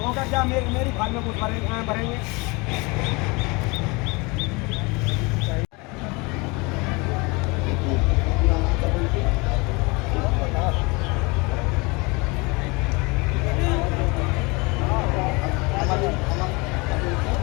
का क्या मेरी फाइल में कुछ भरेंगे।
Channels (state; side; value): quieter; right; 26.9 dB